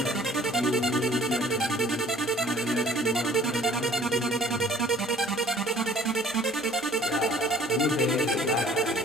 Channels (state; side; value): normal; both; correlation 0.54